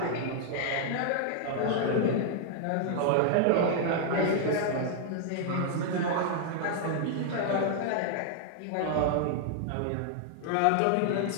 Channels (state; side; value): different; both; correlation -0.01